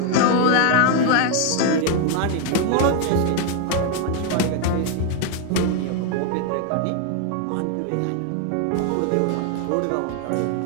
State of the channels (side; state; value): both; different; correlation 0.00